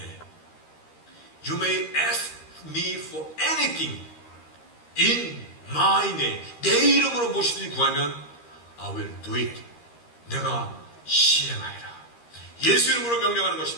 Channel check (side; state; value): right; late; 13 ms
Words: You may ask me for anything in my name. 내 이름으로 무엇이든지 구하면 I will do it. 내가 시행하리라. 예수 이름으로 명령하는